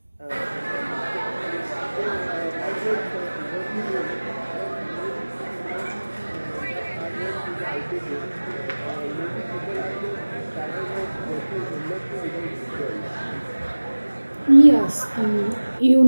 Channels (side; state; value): both; inverted; correlation -1.00